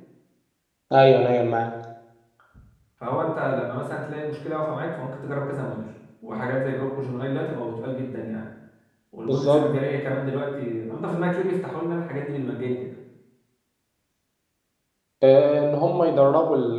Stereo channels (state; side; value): identical; both; correlation 1.00